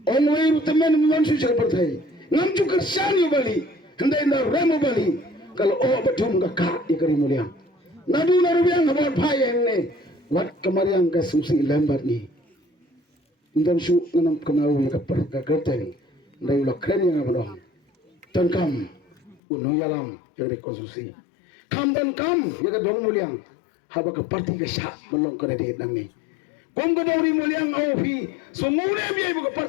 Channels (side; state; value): right; drops out; at 19.4 s